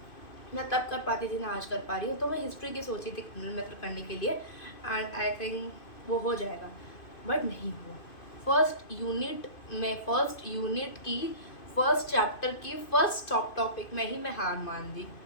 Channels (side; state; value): right; late; 2.5 ms